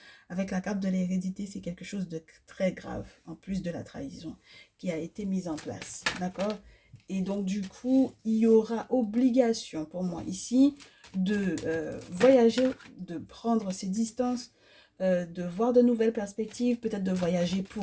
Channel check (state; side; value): identical; both; correlation 1.00